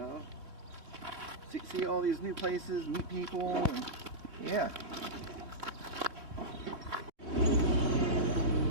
see all these new places, meet people, and yeah.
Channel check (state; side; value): late; left; 2.9 ms